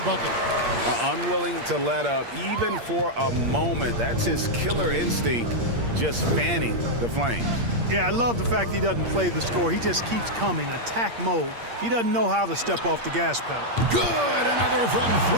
bucket. Unwilling to let up even for a moment. That's his killer instinct, just fanning the flames. Yeah, I love the fact he doesn't play the score. He just keeps coming, attack mode. He doesn't know how to step off the gas pedal. Good, another from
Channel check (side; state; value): left; late; 8.6 ms